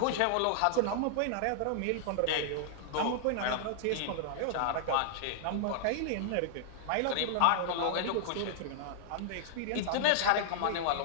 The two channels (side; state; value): both; different; correlation -0.01